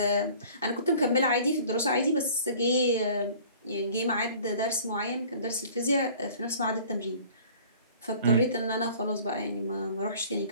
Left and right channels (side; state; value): both; inverted; correlation -0.49